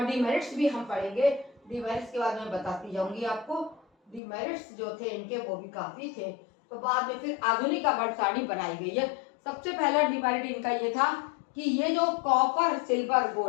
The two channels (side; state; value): right; drops out; at 4.2 s